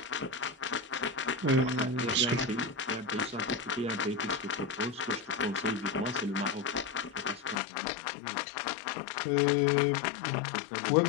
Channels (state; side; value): drops out; right; at 7.6 s